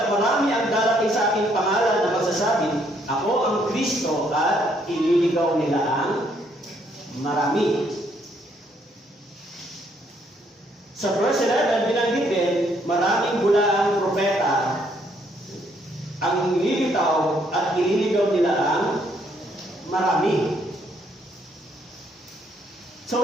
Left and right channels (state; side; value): normal; both; correlation 0.69